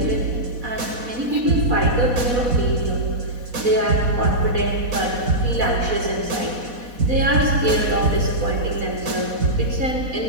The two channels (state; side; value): late; left; 4.1 ms